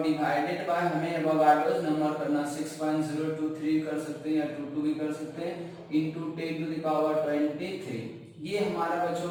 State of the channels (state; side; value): identical; both; correlation 1.00